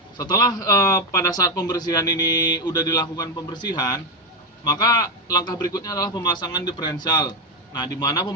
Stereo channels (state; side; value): normal; both; correlation 0.08